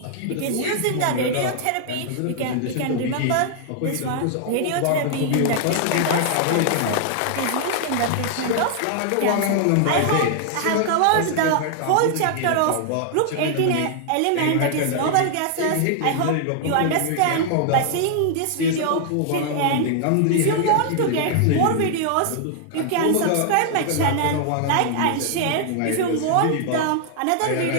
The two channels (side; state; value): both; different; correlation 0.00